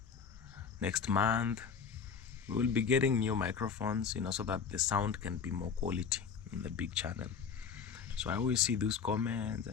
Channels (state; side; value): quieter; right; 6.5 dB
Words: next month, we will be getting new microphones, you know, so that the sound can be more quality in the big channel. So I always see those comments,